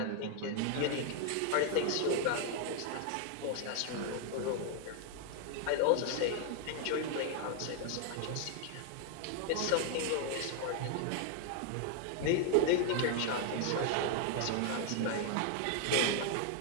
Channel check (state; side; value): different; both; correlation 0.00